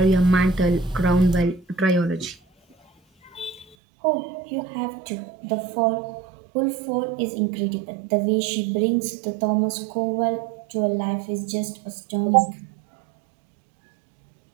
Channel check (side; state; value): left; drops out; at 3.8 s